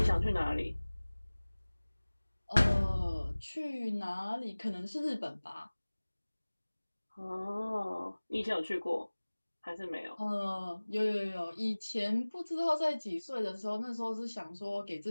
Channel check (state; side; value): inverted; both; correlation -1.00